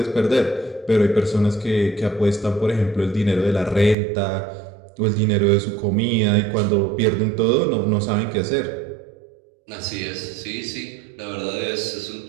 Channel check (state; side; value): drops out; left; at 4.0 s